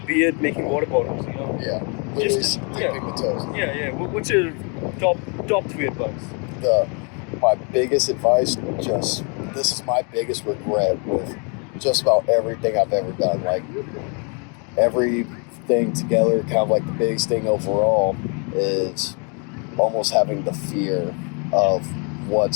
be it making water bottles, you know? Yeah. Just dipping the toes. Yeah. What's your top 3 advice? My biggest advice, this is my biggest regret with just about everything I've ever done. Like, everything together, kind of like the biggest thing overall is almost having the fear of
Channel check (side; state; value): right; quieter; 36.1 dB